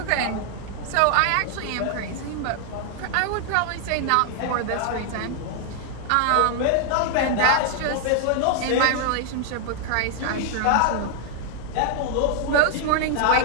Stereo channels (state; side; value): different; both; correlation 0.00